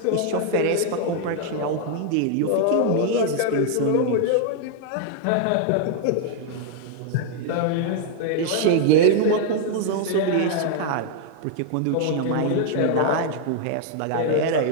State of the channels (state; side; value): different; both; correlation 0.00